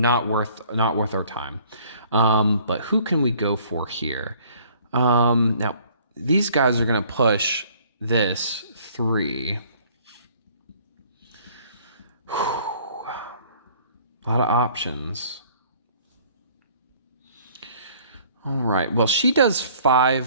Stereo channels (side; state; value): both; inverted; correlation -0.56